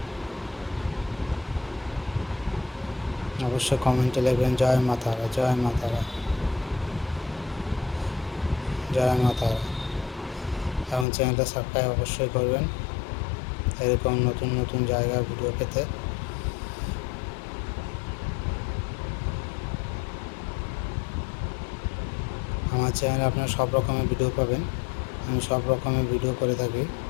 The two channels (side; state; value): right; drops out; at 11.1 s